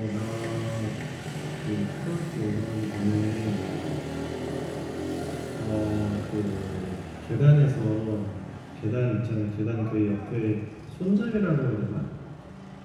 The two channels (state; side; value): identical; both; correlation 1.00